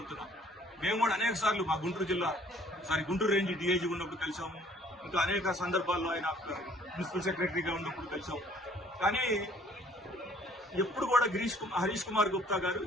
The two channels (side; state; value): both; normal; correlation 0.58